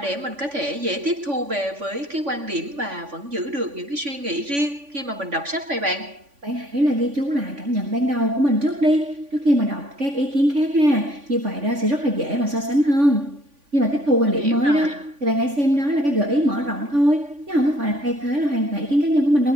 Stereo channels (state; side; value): late; left; 3.5 ms